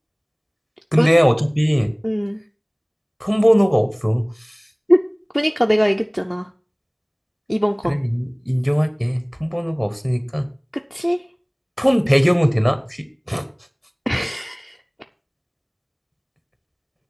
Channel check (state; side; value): identical; both; correlation 1.00